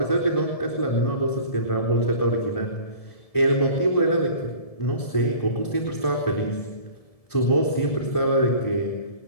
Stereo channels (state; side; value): late; right; 1.7 ms